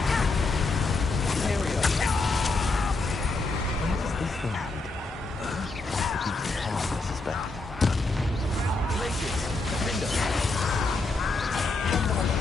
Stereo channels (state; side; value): quieter; right; 3.4 dB